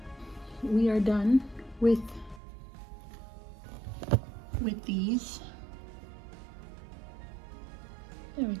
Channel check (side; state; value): left; drops out; at 2.4 s